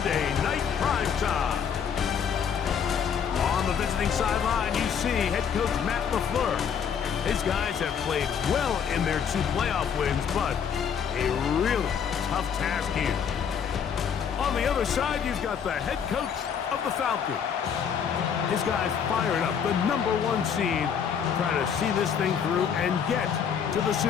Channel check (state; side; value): quieter; right; 7.5 dB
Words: Night Primetime. On the visiting sideline, you see head coach Matt LaFleur. His guys have played well in their 2 playoff wins, but a really tough task here. On the other side, you've got the head coach of the Falcons. His guys firing up the #1 seed, trying to see this thing through and get to the